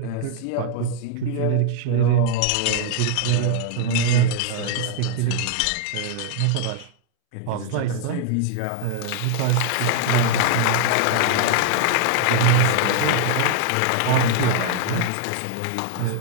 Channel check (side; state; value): both; different; correlation 0.00